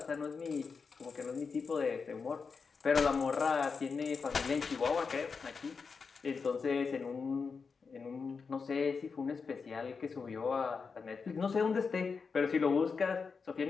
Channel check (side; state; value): right; quieter; 5.2 dB